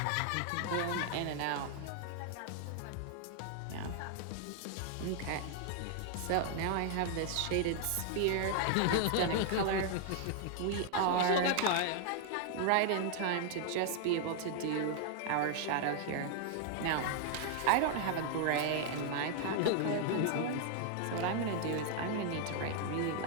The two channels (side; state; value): both; different; correlation 0.00